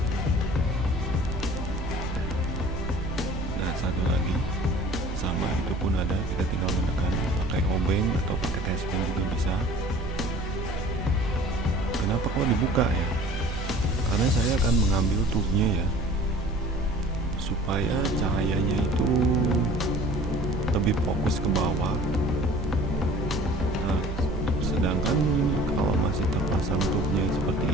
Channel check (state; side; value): normal; both; correlation 0.47